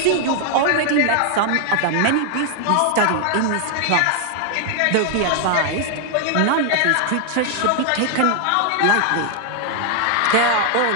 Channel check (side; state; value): both; different; correlation 0.00